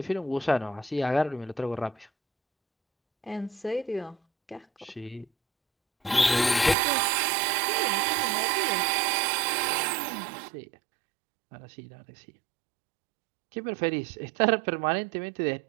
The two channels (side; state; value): left; drops out; at 6.8 s